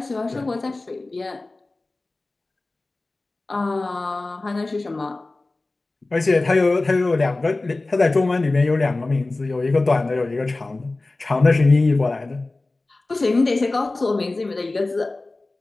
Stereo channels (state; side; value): quieter; right; 3.1 dB